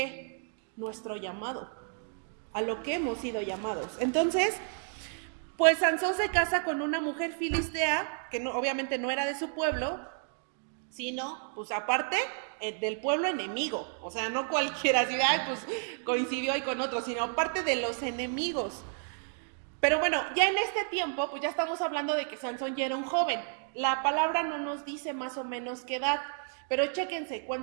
nuestro llamado, a lo que hemos sido llamados. Entonces, pues Sansón se casa con una mujer filistea, que no, obviamente no era de su pueblo, sino, pues aparte, del pueblo enemigo. O sea, no cualquiera, así, pues coincidió ahí con otros, sino aparte de los enemigos. Pero bueno, ya en este tiempo, pues ya estamos hablando de que Sansón ya era un joven. La palabra no nos dice más o menos qué edad, pero chéquense,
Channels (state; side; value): silent; left; 57 dB below the other